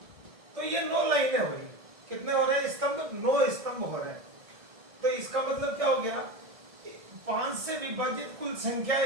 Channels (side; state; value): left; late; 1.7 ms